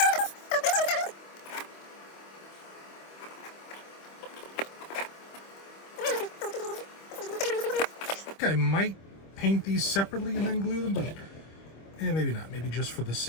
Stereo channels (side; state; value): right; late; 25 ms